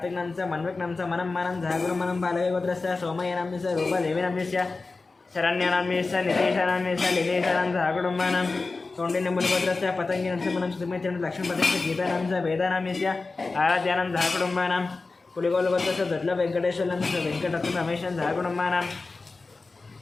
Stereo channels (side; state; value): right; quieter; 3.8 dB